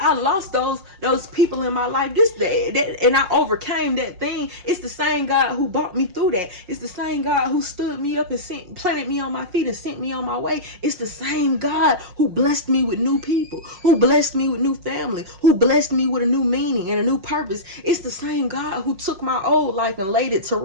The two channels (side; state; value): left; late; 5.5 ms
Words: lost those people in my life, and I overcame that thing. It's the same God who brought me through that. It's the same God who stood me up and planted me on my feet and sent me on my way. It's the same God who blessed me with new people, who blessed me with new family, who blessed me with a new meaning and a new purpose. It's the same God who took my old life and laid it to